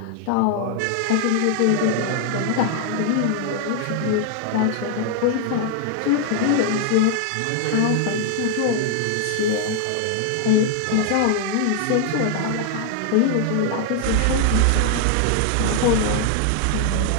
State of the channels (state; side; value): different; both; correlation 0.00